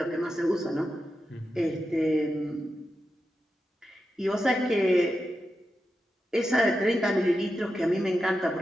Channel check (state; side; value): normal; both; correlation 0.89